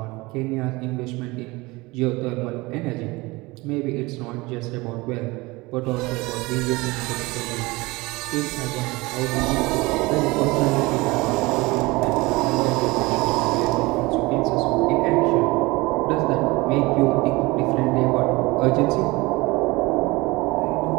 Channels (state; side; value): quieter; left; 22.8 dB